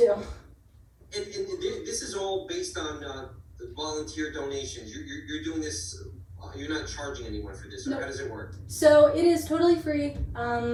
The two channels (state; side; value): identical; both; correlation 1.00